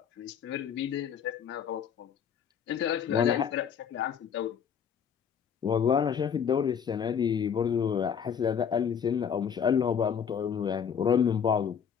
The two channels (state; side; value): quieter; right; 7.7 dB